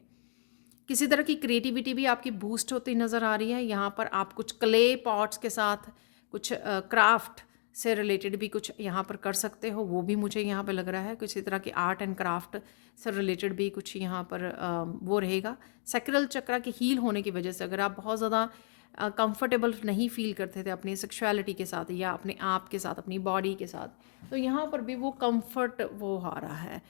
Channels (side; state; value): right; silent; 56 dB below the other